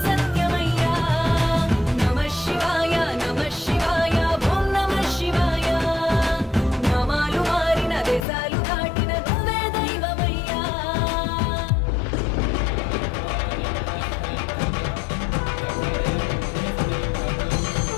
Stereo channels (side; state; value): right; drops out; at 8.2 s